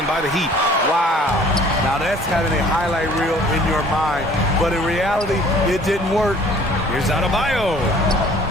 by the Heat. Wow. Now that's having a highlight reel in your mind. But in reality, it didn't work. Here's Adebayo.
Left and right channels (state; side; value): normal; both; correlation 0.53